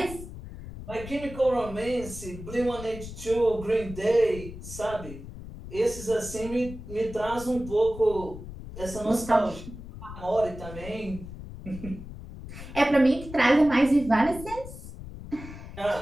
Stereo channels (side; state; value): left; noise; rumble, 12 dB below the sound